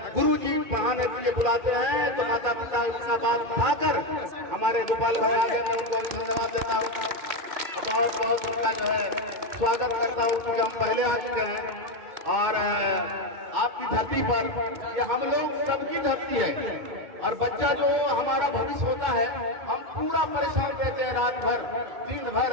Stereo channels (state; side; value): late; left; 2.2 ms